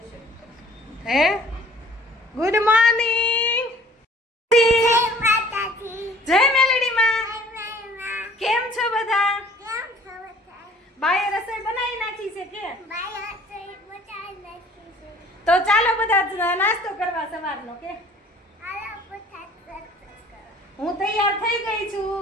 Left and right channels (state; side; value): normal; both; correlation 0.53